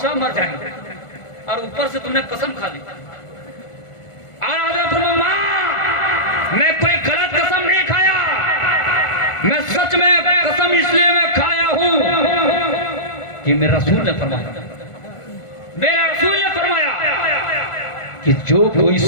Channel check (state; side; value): late; right; 1.5 ms